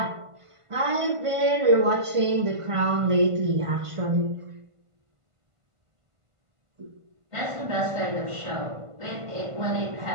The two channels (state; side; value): late; left; 1.5 ms